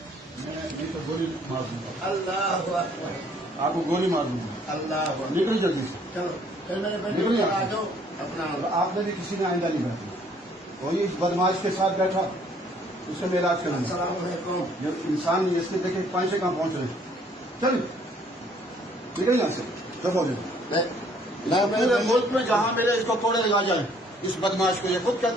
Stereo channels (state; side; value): normal; both; correlation 0.61